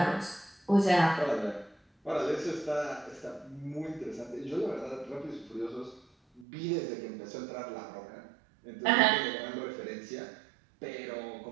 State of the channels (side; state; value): left; drops out; at 6.5 s